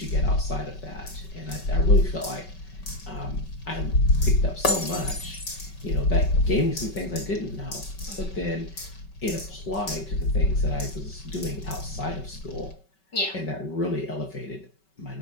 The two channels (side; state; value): right; late; 5.3 ms